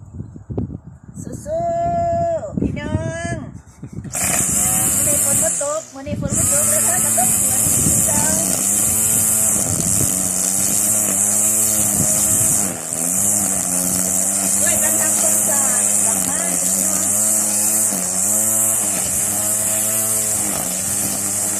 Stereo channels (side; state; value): both; identical; correlation 1.00